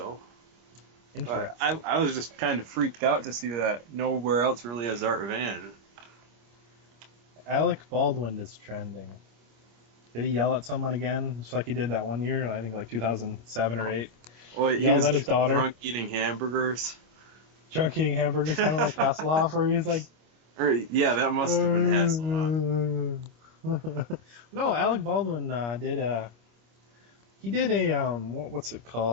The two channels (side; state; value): left; late; 25 ms